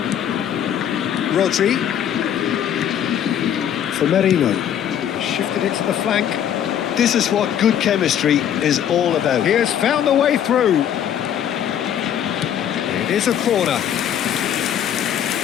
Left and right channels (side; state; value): right; quieter; 9.7 dB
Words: Rodri. For Merino, shifted it to the flank. This is what good chemistry is all about. He has found the way through. It is a corner.